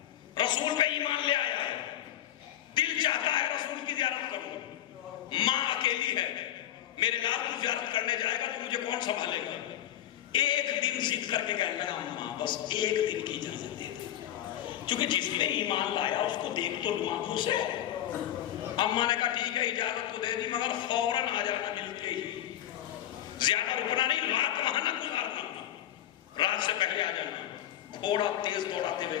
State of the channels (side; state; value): right; quieter; 12.1 dB